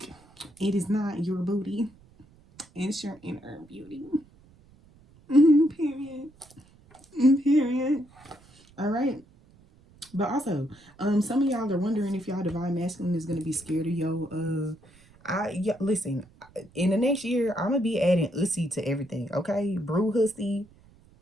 it is not your booty, it's your inner beauty. Period. Period. All right. But also, some of y'all are wondering if y'all divine masculine is gonna be scared of listen, in the next year, I'm gonna be adding ussy to everything. Okay, brew hussy,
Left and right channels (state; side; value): noise; right; rumble, 28 dB below the sound